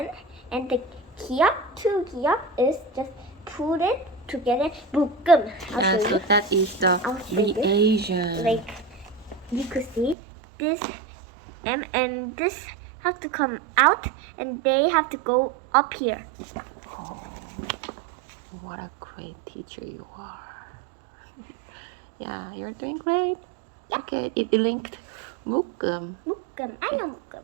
the kia is just put it together. 묶음. Yeah, so that is the reagent. Like you could see this and this have to come out, and they have to go up here. What a great teacher you are. Yeah, you're doing great. Yeah. Okay, it linked 묶음. 묶음. I know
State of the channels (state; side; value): drops out; left; at 10.2 s